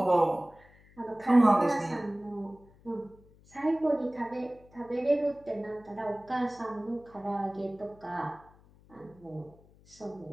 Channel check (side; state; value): left; noise; hum, 27 dB below the sound